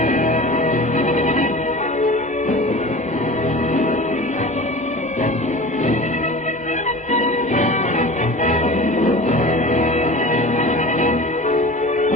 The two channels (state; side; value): normal; both; correlation 0.36